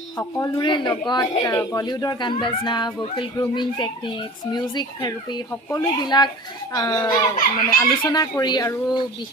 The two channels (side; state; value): both; normal; correlation 0.39